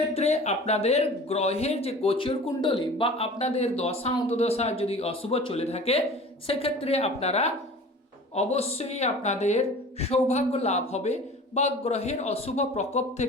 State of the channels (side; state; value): both; normal; correlation 0.41